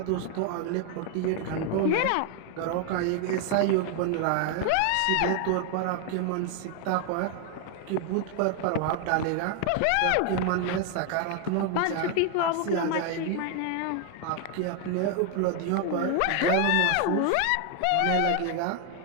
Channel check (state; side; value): different; both; correlation 0.00